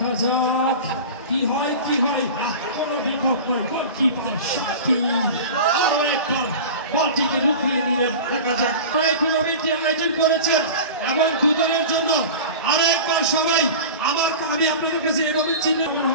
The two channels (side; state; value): both; inverted; correlation -0.33